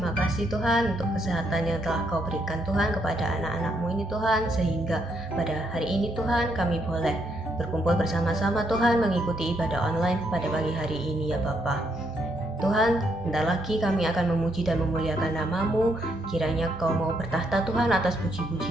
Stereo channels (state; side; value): normal; both; correlation 0.75